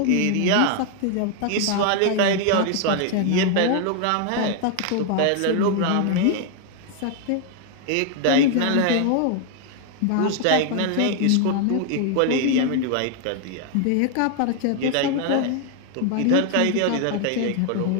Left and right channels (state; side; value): different; both; correlation 0.01